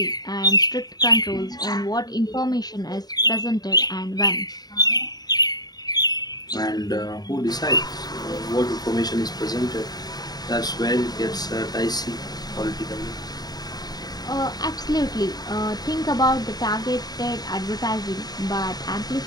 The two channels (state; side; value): late; right; 0.19 ms